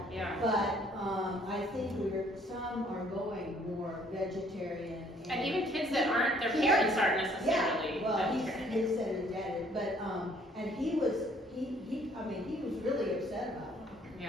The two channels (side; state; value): both; normal; correlation 0.62